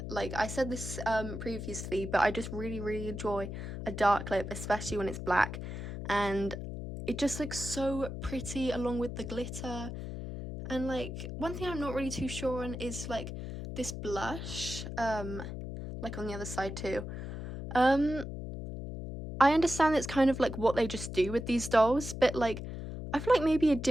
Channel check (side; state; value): left; noise; hum, 7 dB below the sound